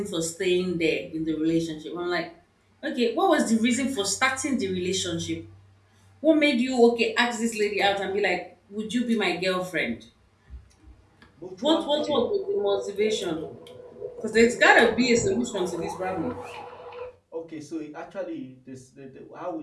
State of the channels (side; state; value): both; identical; correlation 1.00